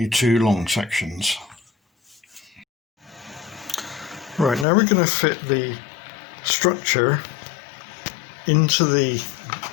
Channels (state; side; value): drops out; right; at 4.7 s